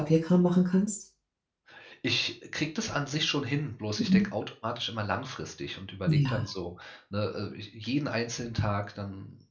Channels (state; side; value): identical; both; correlation 1.00